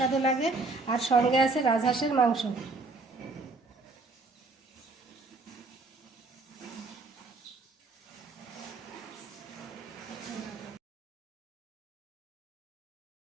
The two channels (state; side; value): quieter; left; 3.5 dB